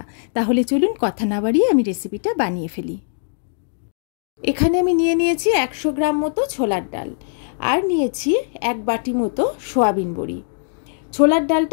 তাহলে চলুন কথা না বাড়িয়ে আমি রেসিপিটা বানিয়ে ফেলি। এখানে আমি নিয়েছি 100 গ্রাম মতো ছোলার ডাল, আর নিয়েছি 1 বাটি মতো সোয়াবিন বড়ি। ছোলার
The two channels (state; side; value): silent; right; 65 dB below the other